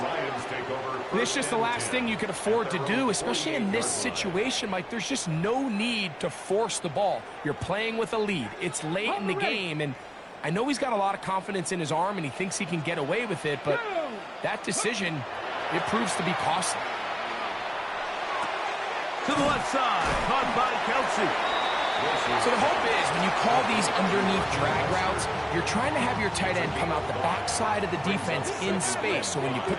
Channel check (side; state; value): both; identical; correlation 1.00